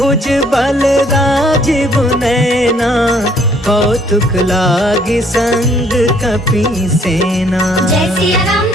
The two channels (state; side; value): normal; both; correlation 0.63